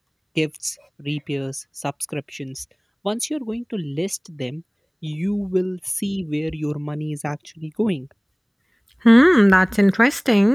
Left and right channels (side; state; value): both; identical; correlation 1.00